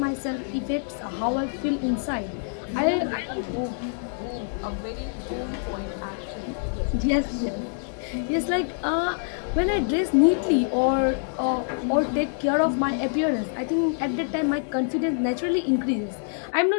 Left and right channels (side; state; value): right; silent; digital silence